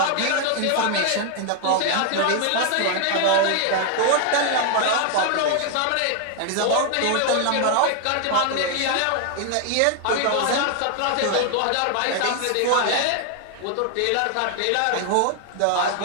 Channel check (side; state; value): both; different; correlation 0.00